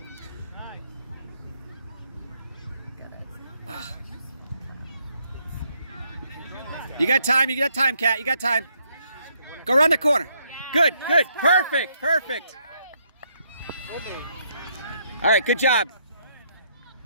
Nice. Good. You got time. You got time, Kat. You got time. Go around the corner. Good. Good. Perfect. Perfect. All right. Good job.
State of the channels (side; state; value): both; inverted; correlation -0.73